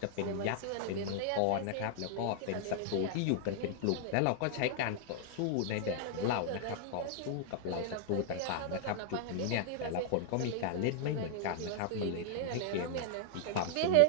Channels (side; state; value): both; different; correlation 0.00